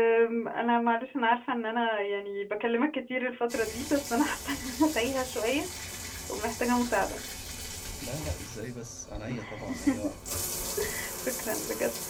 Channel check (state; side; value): identical; both; correlation 1.00